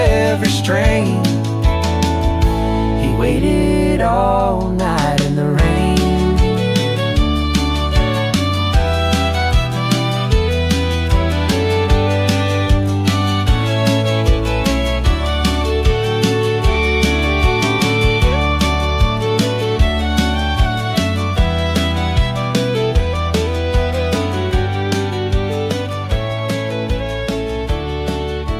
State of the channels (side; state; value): both; identical; correlation 1.00